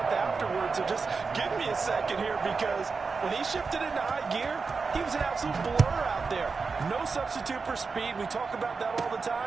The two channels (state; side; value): quieter; left; 4.7 dB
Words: afterwards. So just give me a second here, because when he shifted into high gear, he was an absolute blur out there. No substitute for speed. We talk about that all the